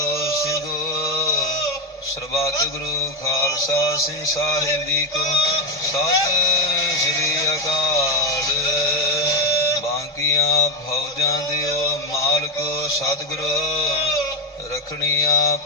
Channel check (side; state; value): both; normal; correlation 0.08